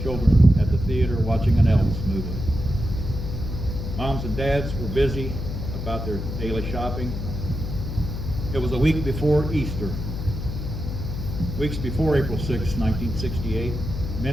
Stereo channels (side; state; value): left; noise; hum, 5 dB below the sound